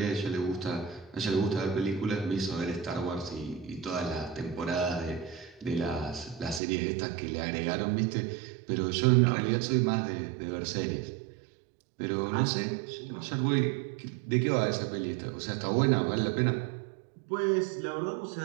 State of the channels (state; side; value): drops out; left; at 6.6 s